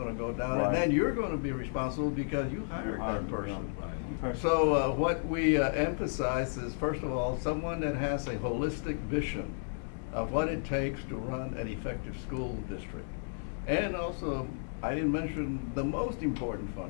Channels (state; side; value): silent; right; digital silence